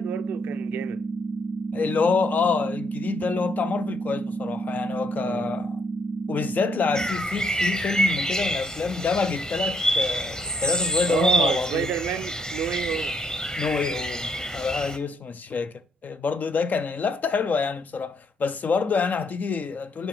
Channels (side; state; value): both; normal; correlation 0.72